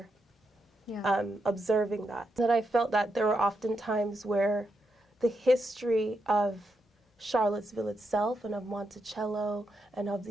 observing that. That I felt that there were often times where the history of Charlottesville itself and of Monticello and of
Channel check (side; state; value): both; normal; correlation 0.83